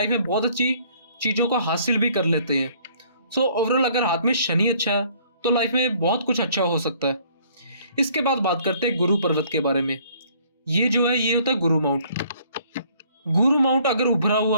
में बहुत अच्छी चीज़ों को हासिल भी कर लेते हैं। सो ओवरऑल अगर हाथ में शनि अच्छा है तो लाइफ में बहुत कुछ अच्छा हो सकता है। इसके बाद बात करते हैं गुरु पर्वत के बारे में। ये जो है ये होता है गुरु माउंट। गुरु माउंट अगर उभरा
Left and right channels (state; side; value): inverted; both; correlation -0.60